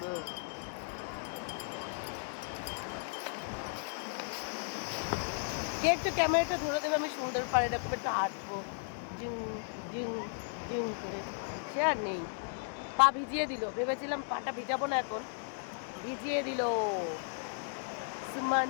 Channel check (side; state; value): right; silent; 54 dB below the other